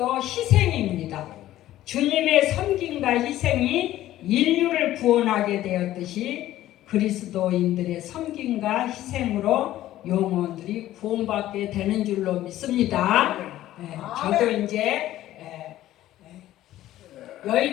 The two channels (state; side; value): quieter; right; 14.1 dB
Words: 희생입니다. 주님의 섬김과 희생이 인류를 구원하게 되었듯이 그리스도인들의 섬김과 희생으로 영혼들이 구원받게 되는 줄로 믿습니다. 저도 이제